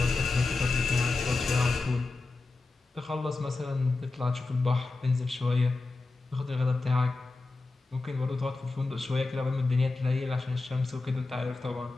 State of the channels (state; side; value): quieter; right; 3.5 dB